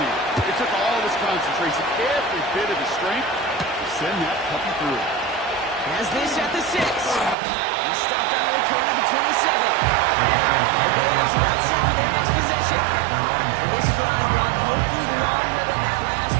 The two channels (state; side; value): drops out; left; at 7.4 s